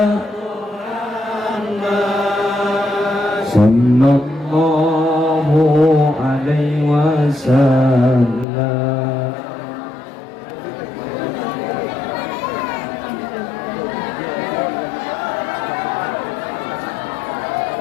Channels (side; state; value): right; drops out; at 8.5 s